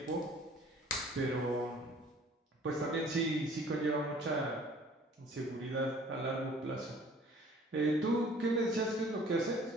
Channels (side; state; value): both; normal; correlation 0.52